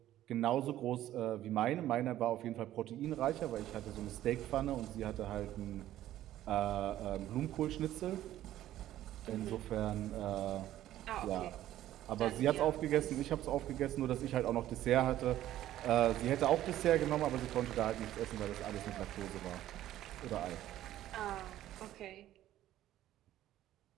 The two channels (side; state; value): left; quieter; 13.3 dB